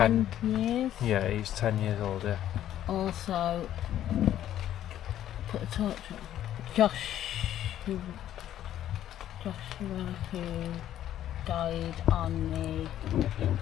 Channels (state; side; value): quieter; right; 11.8 dB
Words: years. Yeah, he's 10 years old, yeah. Also, put a torch on Joshua, who died on the